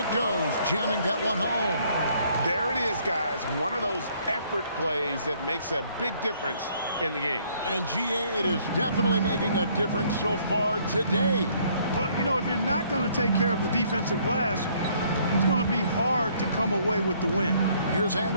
goes, jamming that one home. There it is, guys. One of those effort plays that makes a big difference in the game. And GA, it is definitely making a difference so far today. Well, you know, if you're not going to take care of the defensive glass, it's going to be hard to come away with the win. Here's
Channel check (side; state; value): both; inverted; correlation -0.64